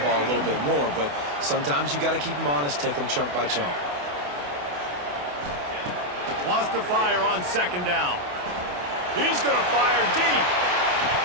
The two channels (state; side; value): late; left; 28 ms